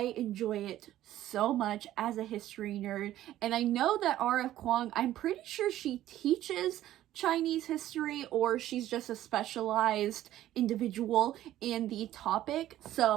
enjoy it so much as a history nerd, and I know that R.F. Kuang, I'm pretty sure she teaches Chinese history or she's just a specialized individual in the topic,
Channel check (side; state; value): left; quieter; 13.5 dB